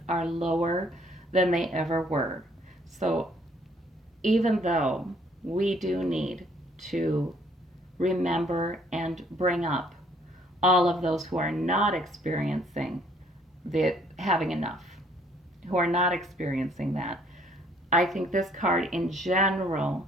are lower than they ever were. So even though we do need to remember and bring up all of those who are not experiencing having enough, who are not experiencing that, I think this card in general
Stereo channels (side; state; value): both; normal; correlation 0.63